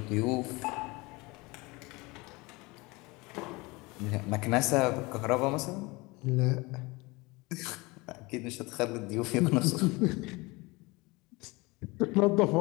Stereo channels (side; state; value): right; quieter; 24.2 dB